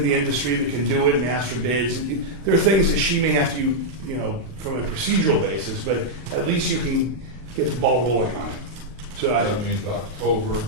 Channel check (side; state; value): left; late; 39 ms